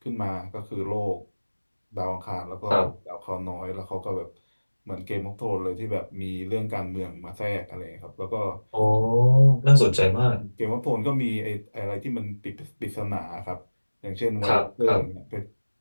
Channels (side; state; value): both; inverted; correlation -1.00